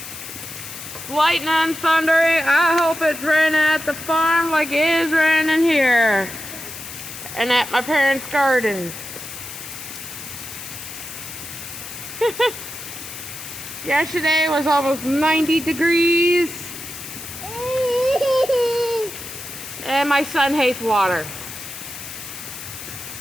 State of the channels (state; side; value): noise; left; hiss, 11 dB below the sound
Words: Lightning and thundering. I hope it's raining at the farm like it is raining here. And at my parents' garden. Yesterday was almost 90 degrees. And my son hates water.